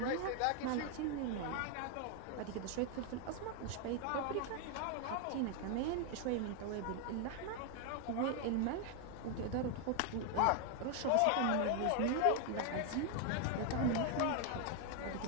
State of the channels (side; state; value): both; different; correlation 0.00